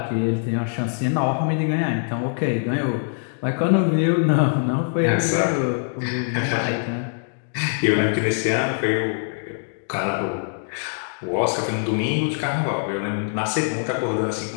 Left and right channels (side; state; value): right; silent; digital silence